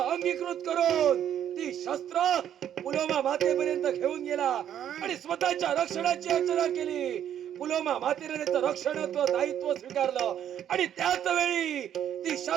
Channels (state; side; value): quieter; left; 10.1 dB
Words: करून ती शस्त्र पुलोमा मातेपर्यंत घेऊन गेला आणि स्वतःच्या रक्षणाची याचना केली. पुलोमा मातेने त्याचं रक्षणत्व दायित्व स्वीकारलं आणि त्याच वेळी ती